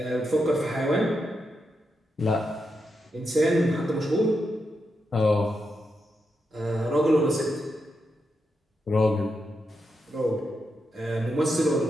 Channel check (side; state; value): both; normal; correlation 0.85